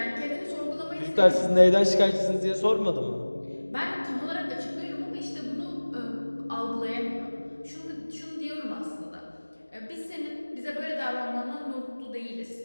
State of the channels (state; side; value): inverted; both; correlation -1.00